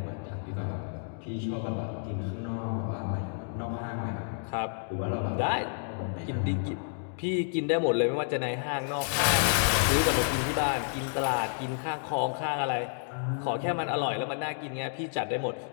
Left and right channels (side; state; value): right; silent; digital silence